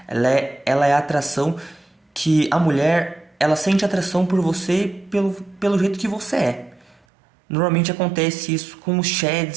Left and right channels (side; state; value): left; drops out; at 7.0 s